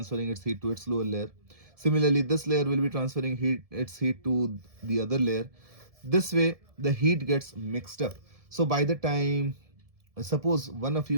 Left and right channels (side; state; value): left; late; 1.7 ms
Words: its heat to its lower layer. Similarly, this layer will be transferring its heat to the other layer. This way the heat gets mixed up. So by the time, suppose one of